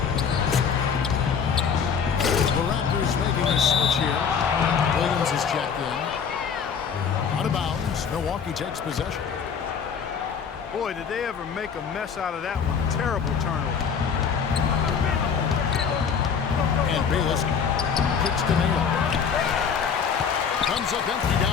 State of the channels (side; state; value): right; quieter; 6.7 dB